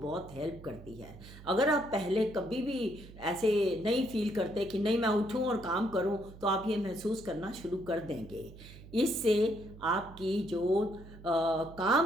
हेल्प करती है। अगर आप पहले कभी भी ऐसे नहीं फील करते कि नहीं मैं उठूं और काम करूं, तो आप ये महसूस करना शुरू कर देंगे। इससे आपकी जो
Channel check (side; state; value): right; noise; hum, 17 dB below the sound